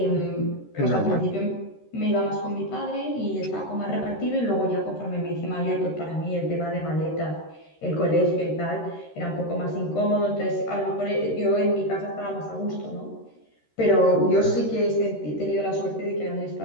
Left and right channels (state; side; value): late; right; 13 ms